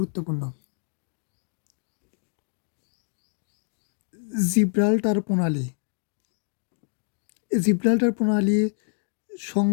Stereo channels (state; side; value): silent; right; 56 dB below the other